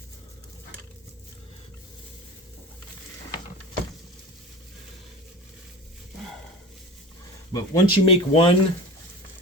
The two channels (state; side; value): normal; both; correlation 0.34